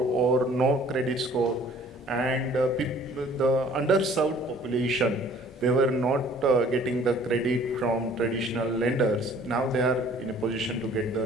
no credit score, and the underserved population, they were not getting the credit from traditional lenders. Now they are in a position to get the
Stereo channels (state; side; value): normal; both; correlation 0.54